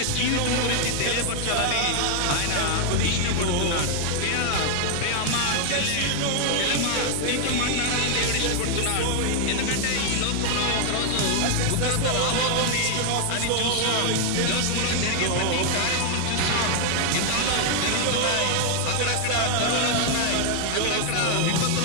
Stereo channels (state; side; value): different; both; correlation 0.00